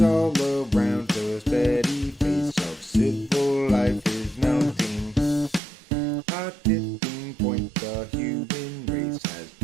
all around the steady face of civil life is mounting. A tipping point the human race has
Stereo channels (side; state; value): left; drops out; at 5.6 s